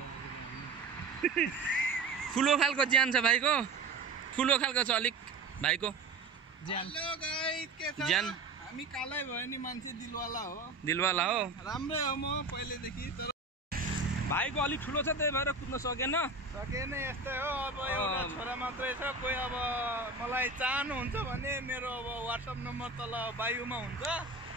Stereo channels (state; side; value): quieter; left; 3.8 dB